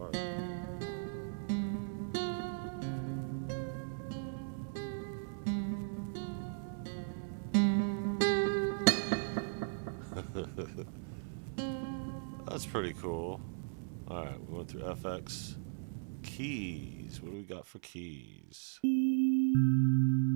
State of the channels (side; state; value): left; silent; 53 dB below the other